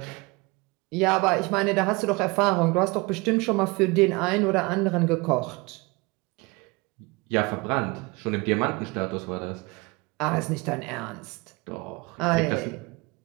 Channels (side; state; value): left; quieter; 25.8 dB